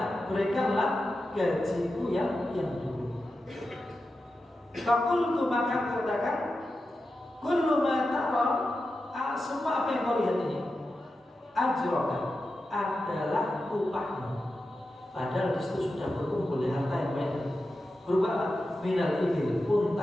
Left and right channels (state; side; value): normal; both; correlation 0.91